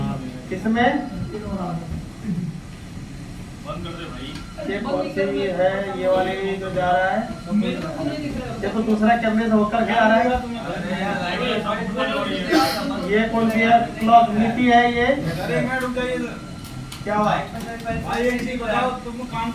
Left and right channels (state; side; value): identical; both; correlation 1.00